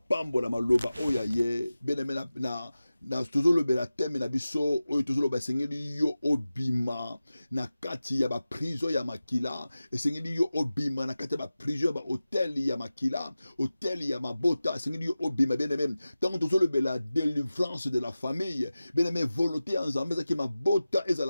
maloba oya ye beneme na tozolo bela teme na biso oyo tozolo basengeli yo obima na kati ya ba prison ya makila esengeli yo obima na kati ya ba prison ya ba hotel ya makila hotel ya mabota esengeli yo obima beneme tant tozolo bela délivrance de la famille beneme volonté en Nzambe ezaki mabota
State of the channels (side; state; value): both; inverted; correlation -0.95